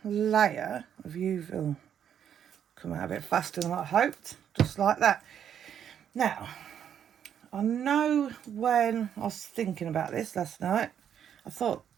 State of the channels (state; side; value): quieter; left; 9.0 dB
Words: layer of UV. Oh, come out a bit faster than I hoped. Just like that. Now, I know when I was thinking about this last night, I thought